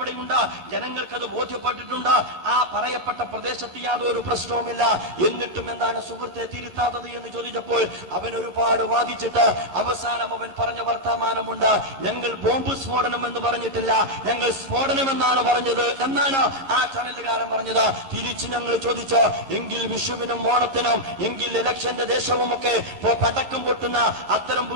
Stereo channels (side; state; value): left; late; 11 ms